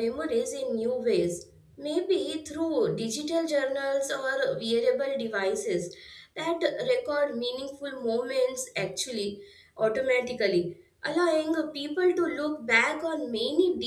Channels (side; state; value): both; identical; correlation 1.00